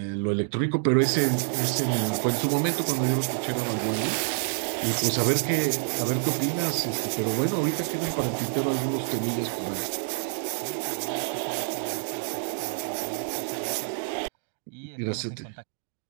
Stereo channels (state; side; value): silent; left; digital silence